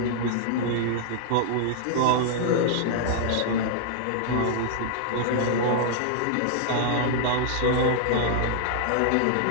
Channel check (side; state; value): both; different; correlation -0.01